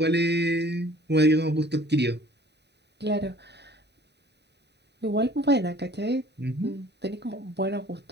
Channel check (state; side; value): late; left; 0.50 ms